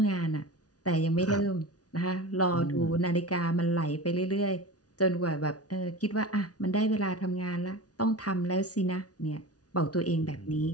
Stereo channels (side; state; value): right; late; 0.68 ms